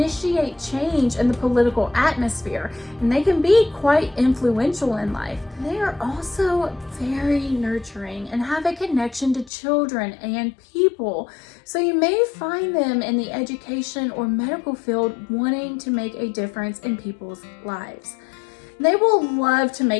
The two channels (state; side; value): drops out; right; at 9.5 s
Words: change in the political atmosphere. And they can be quite influential in life. They are also very nurturing and have a connection to children and people. So you may find them in the education or medical field wanting to make a difference in people's lives. They will love to